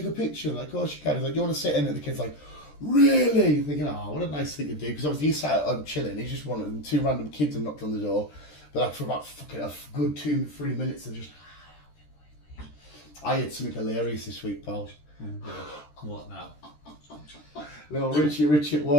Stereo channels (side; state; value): right; late; 13 ms